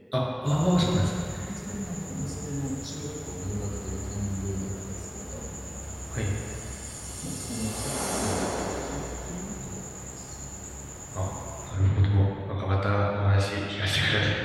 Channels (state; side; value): identical; both; correlation 1.00